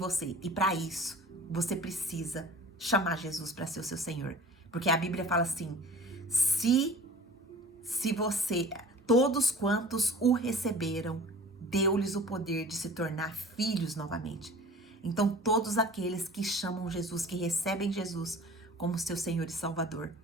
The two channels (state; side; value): normal; both; correlation 0.43